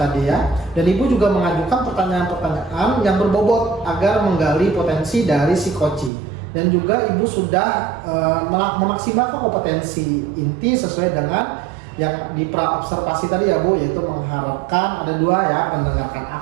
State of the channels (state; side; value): drops out; left; at 6.1 s